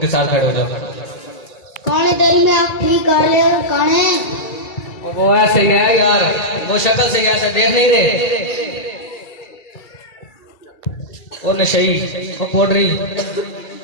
साथ खड़े हो जाओ। कौन है तेरी में आप ठीक कर ले कौन है? और वो ऐसे ही है यार, वो शक्ल से ऐसे देख नहीं रहे। वो नशई, वो पोडरी,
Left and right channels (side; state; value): right; late; 2.3 ms